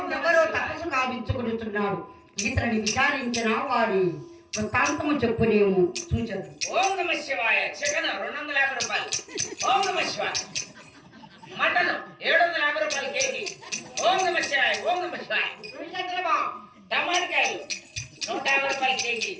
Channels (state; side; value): identical; both; correlation 1.00